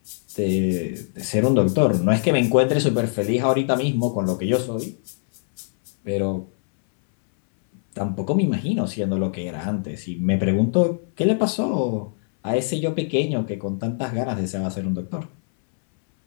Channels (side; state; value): right; silent; 61 dB below the other